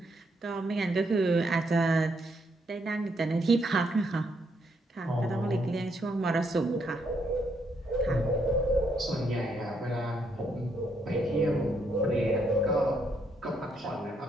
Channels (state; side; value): normal; both; correlation 0.75